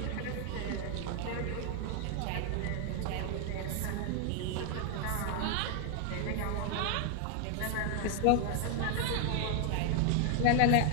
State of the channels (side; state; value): both; different; correlation 0.00